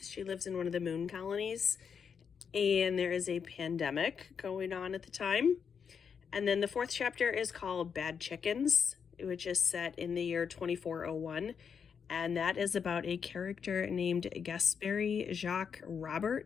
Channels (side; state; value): right; quieter; 6.7 dB